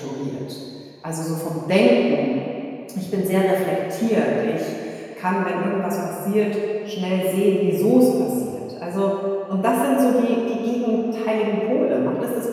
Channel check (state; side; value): identical; both; correlation 1.00